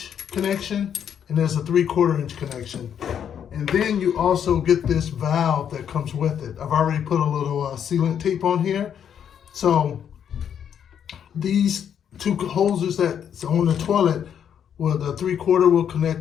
connection, and there's a 3/4 inch connection. And then you also get this valve that comes with it. I've already put a little sealant tape on here. So these 2 hoses that's on the toilet, well, the 3/4 will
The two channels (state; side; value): quieter; right; 8.6 dB